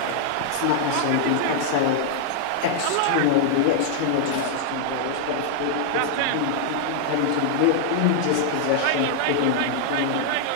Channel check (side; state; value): both; different; correlation 0.00